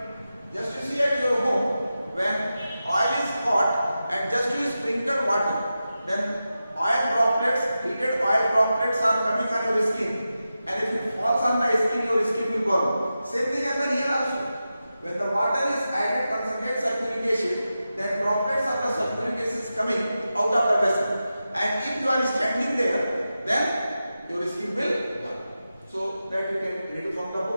Just to see at your home, when oil is hot and just you sprinkle water, then oil droplets, heated oil droplets are coming on your skin. And if it falls on the skin, your skin will burn. Same thing happens here also. When the water is added concentrated sulfuric acid, then droplets of the sulfuric acid is coming out of the vessel. And if you are standing there, then your skin will burn. So that you can read from the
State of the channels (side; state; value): both; inverted; correlation -0.92